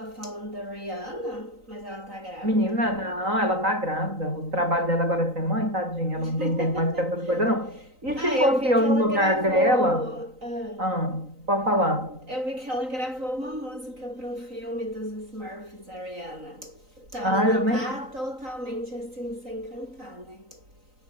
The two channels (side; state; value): left; late; 3.9 ms